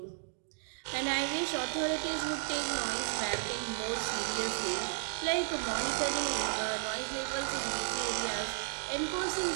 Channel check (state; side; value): silent; left; digital silence